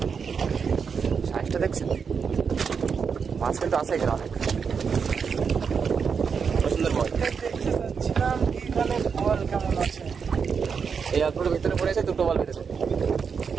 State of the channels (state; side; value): quieter; left; 6.1 dB